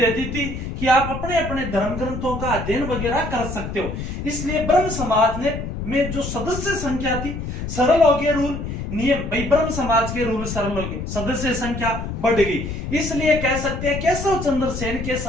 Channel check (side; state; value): left; noise; rumble, 6 dB below the sound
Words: दी थी कि आप अपने अपने धर्म ग्रंथों का अध्ययन वगैरह कर सकते हो। इसलिए ब्रह्म समाज में जो सदस्य संख्या थी, सरल हो गए रूल, नियम। भाई, ब्रह्म समाज के रूल सरल हो गए, सदस्य संख्या बढ़ गई। इसलिए कह सकते हैं केशव चंद्र सेन के